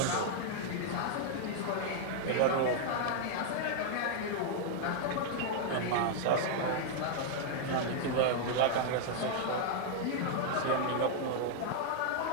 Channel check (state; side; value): different; both; correlation 0.00